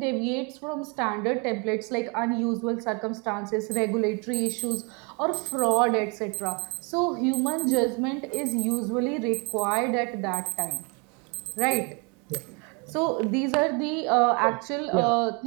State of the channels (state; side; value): quieter; left; 32.7 dB